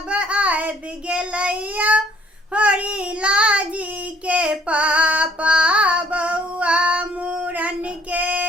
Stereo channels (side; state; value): both; normal; correlation 0.60